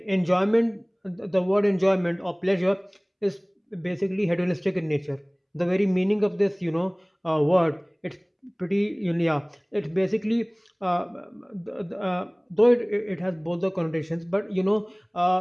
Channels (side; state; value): both; identical; correlation 1.00